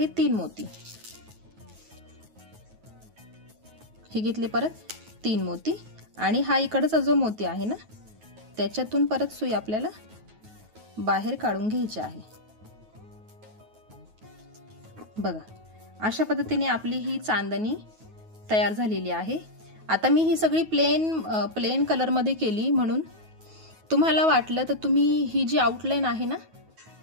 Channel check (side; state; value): left; late; 9.3 ms